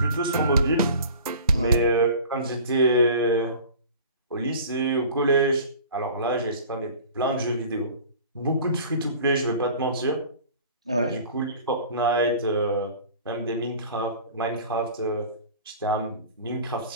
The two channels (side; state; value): both; inverted; correlation -0.42